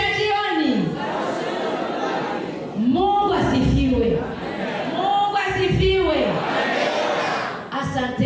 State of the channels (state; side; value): identical; both; correlation 1.00